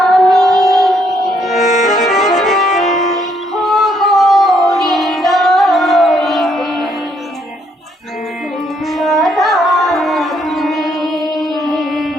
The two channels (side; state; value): both; normal; correlation 0.71